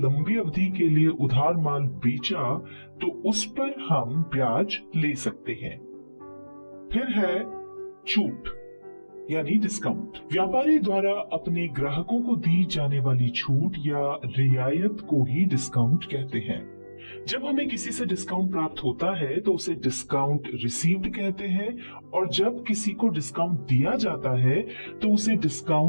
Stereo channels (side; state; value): both; inverted; correlation -1.00